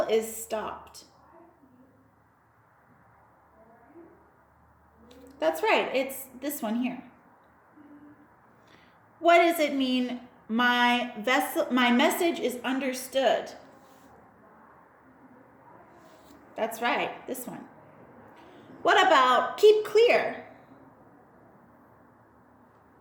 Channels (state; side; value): identical; both; correlation 1.00